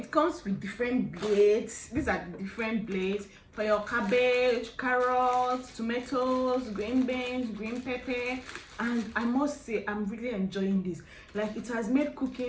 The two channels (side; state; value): both; identical; correlation 1.00